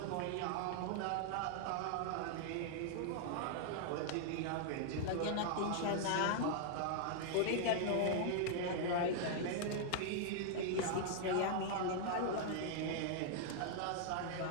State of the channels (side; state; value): both; different; correlation -0.01